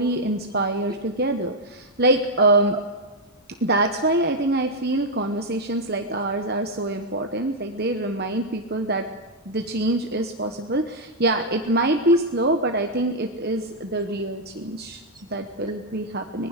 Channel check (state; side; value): normal; both; correlation -0.02